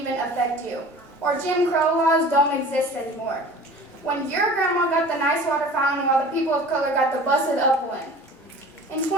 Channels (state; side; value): normal; both; correlation 0.42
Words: affect you. Or Jim Crow laws don't exist anymore. When your grandma got the nice water fountain while the people of color got the busted up one. In